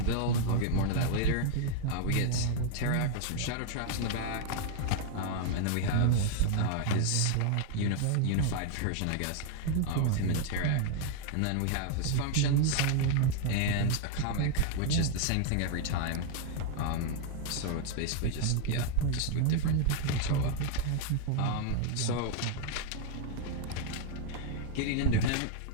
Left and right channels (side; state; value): both; different; correlation 0.00